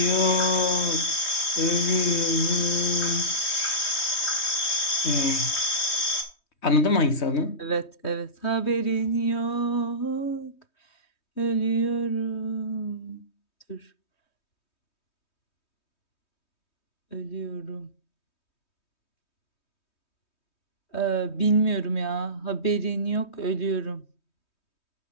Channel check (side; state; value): right; late; 3.2 ms